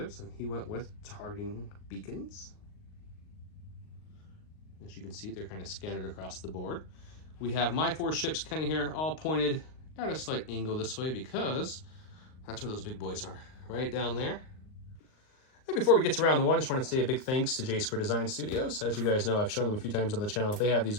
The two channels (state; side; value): late; right; 38 ms